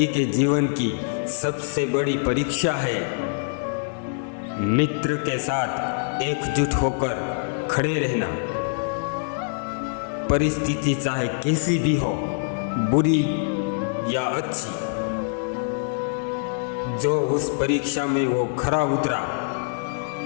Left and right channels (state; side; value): silent; right; digital silence